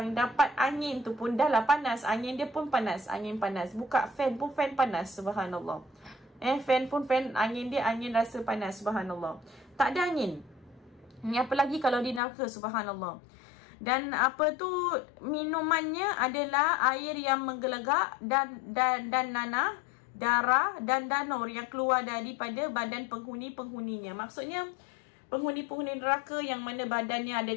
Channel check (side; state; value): right; drops out; at 12.2 s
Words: dapat angin tu pun dah lah panas. Angin dia pun panas, angin panas. Buka fan pun fan panas, subhanallah. Fan pun fan, angin dia angin rasa panas, subhanallah. Tak ada angin. Ni apa lagi kalau di neraka, subhanallah. Dan apa tu, minumannya adalah air yang menggelegak dan nanah, darah dan danur yang keluar daripada badan penghuni-penghuninya. Maksudnya penghuni-penghuni neraka yang mana badannya ada